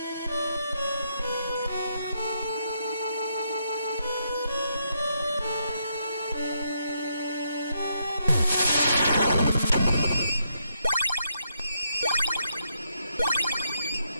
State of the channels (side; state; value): both; inverted; correlation -0.78